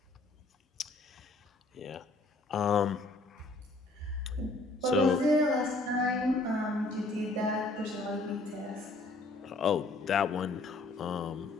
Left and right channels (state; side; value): quieter; right; 3.0 dB